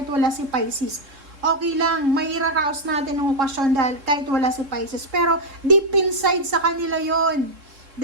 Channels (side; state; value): left; late; 3.7 ms